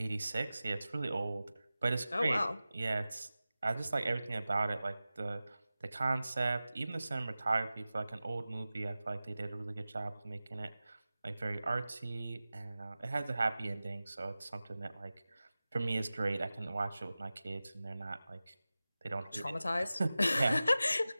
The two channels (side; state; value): both; inverted; correlation -0.96